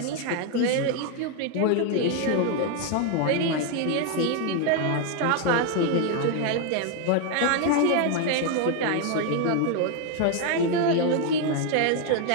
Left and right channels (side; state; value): both; different; correlation 0.01